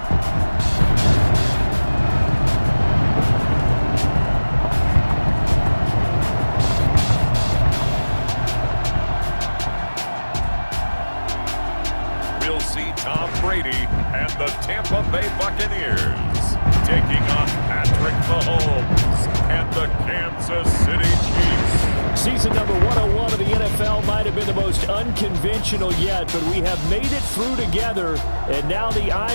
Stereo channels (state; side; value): inverted; both; correlation -1.00